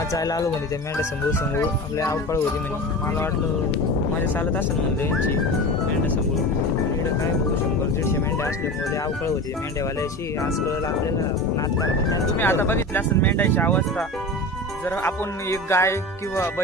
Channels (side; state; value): both; normal; correlation 0.30